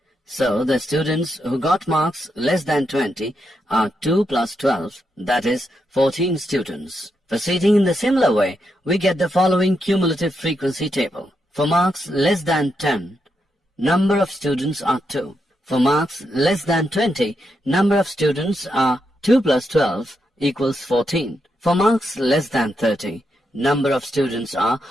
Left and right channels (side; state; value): both; normal; correlation 0.83